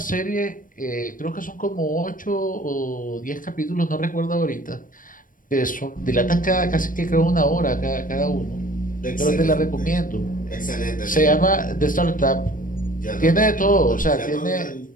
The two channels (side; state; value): right; late; 0.40 ms